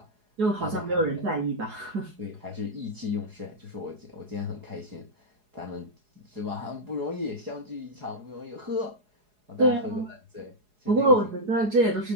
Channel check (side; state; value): left; late; 4.8 ms